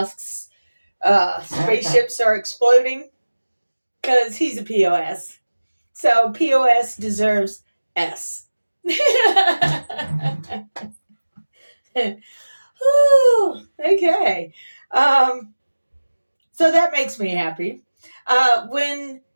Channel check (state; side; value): inverted; both; correlation -1.00